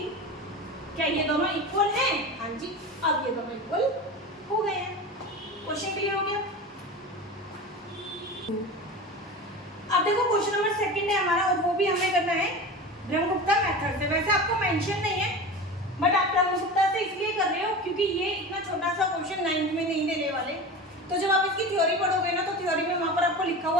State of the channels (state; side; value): normal; both; correlation 0.30